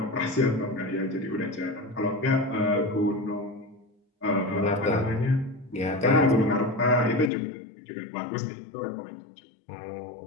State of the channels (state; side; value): drops out; right; at 7.3 s